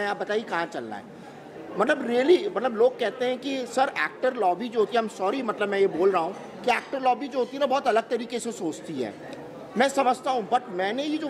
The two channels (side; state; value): both; identical; correlation 1.00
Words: आप बताइए कहाँ चल रहा है, मतलब रियली, मतलब लोग कहते हैं कि सर एक्टर लॉबी जो होती है, I'm सॉरी, मतलब मैं ये बोल रहा हूँ कि एक्टर लॉबी जो होती है ना बहुत अलग तरीके से सोचती है, मैं समझता हूँ। बट मैंने ये जो